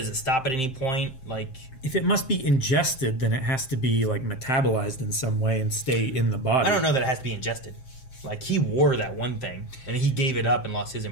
it stop at any point? Like if it must be ingested, then it has to be like metabolized in some way and stay in the body. I don't know that it has to be ingested. Like he wore that one thing and he gave it up and lost his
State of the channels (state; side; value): late; right; 7.6 ms